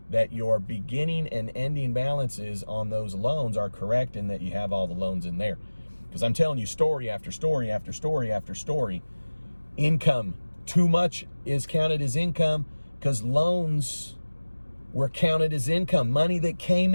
that your beginning and ending balances on those loans are correct and that you have all the loans in there. Because I'm telling you, story after story after story after story, income, too much is counted as income because loans were counted as income. Money that came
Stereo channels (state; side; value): inverted; both; correlation -1.00